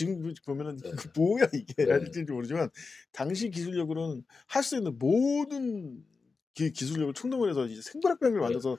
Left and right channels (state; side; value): quieter; right; 4.4 dB